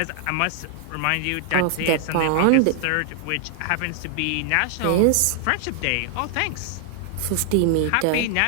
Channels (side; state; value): both; different; correlation 0.00